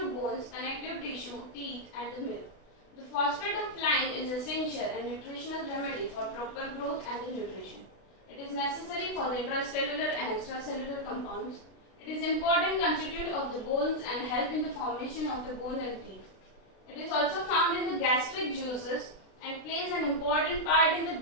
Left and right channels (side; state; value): right; late; 32 ms